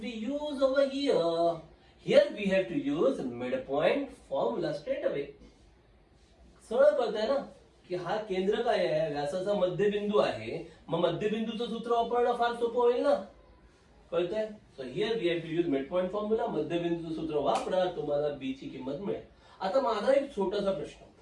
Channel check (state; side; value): identical; both; correlation 1.00